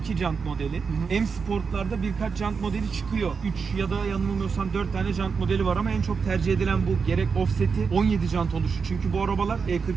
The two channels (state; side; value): quieter; left; 5.5 dB